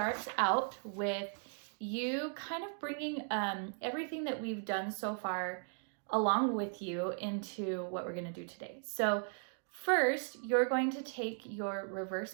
out with you kind of bringing everything that we've done so far along with you into what we're going to do today. So first, you're going to take your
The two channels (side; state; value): left; silent; 53 dB below the other